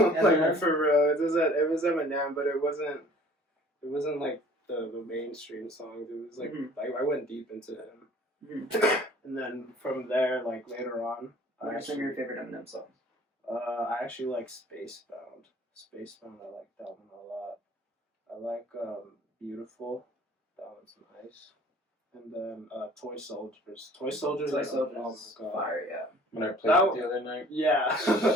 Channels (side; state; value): both; normal; correlation 0.51